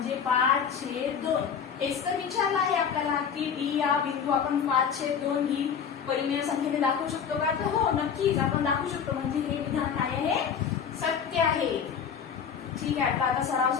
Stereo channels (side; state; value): right; quieter; 7.3 dB